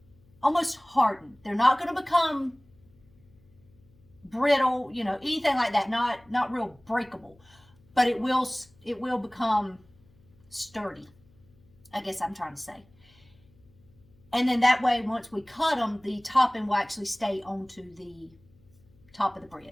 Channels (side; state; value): left; noise; hum, 30 dB below the sound